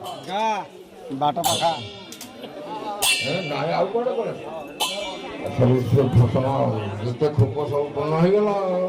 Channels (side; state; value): both; identical; correlation 1.00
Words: ବାଟ ପାଖା ନାଇଁ ଆଉ କୁଆଡେ କୁଆଡେ ସବୁ ଫସଲ ଯେତେ ଖୋପ ସବୁ ପୂର୍ଣ୍ଣ ହେଇଗଲା